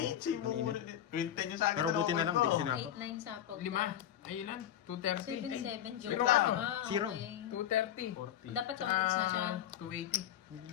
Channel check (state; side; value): quieter; right; 11.0 dB